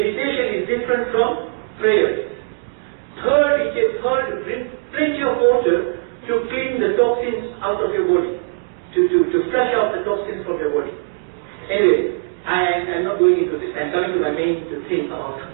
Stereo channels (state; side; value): silent; left; digital silence